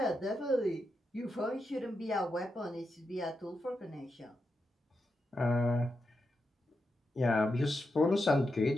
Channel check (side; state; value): both; normal; correlation 0.86